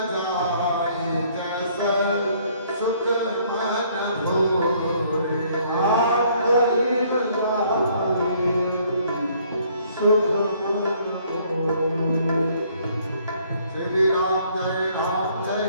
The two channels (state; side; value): inverted; both; correlation -0.63